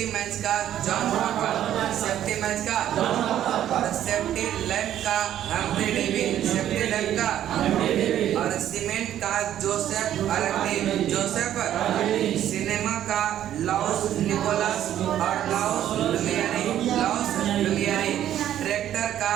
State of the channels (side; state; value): left; quieter; 11.4 dB